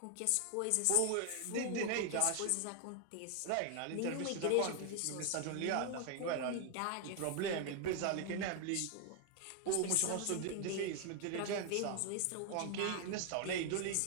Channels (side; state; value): both; different; correlation 0.00